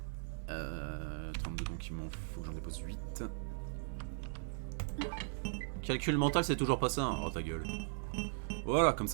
Donc il m'en faut que j'en dépose 8. Calcul mental, c'est toujours pas ça, hein. Oh ta gueule. Voilà, comme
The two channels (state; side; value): silent; left; digital silence